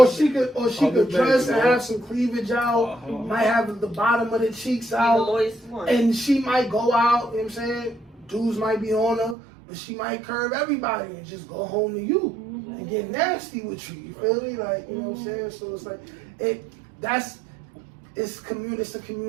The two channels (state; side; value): drops out; left; at 9.3 s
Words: she could dress and have some cleavage out, might have the bottom of the cheeks out, and she might go out, you know what I'm saying? Dudes might be on her, but she might curve everybody and just go home to you and get nasty with you. You feel me? Like, you know what I'm saying? So it's like it's a